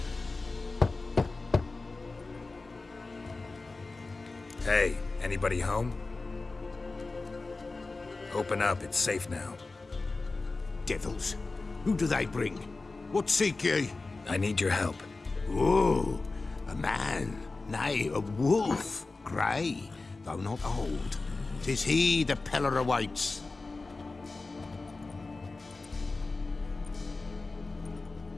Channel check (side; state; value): right; quieter; 3.6 dB